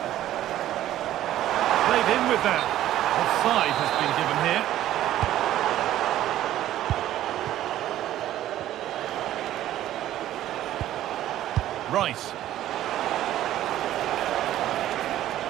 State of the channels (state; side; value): quieter; left; 13.1 dB